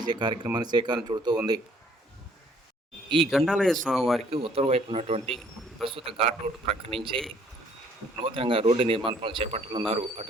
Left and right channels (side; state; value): both; normal; correlation 0.61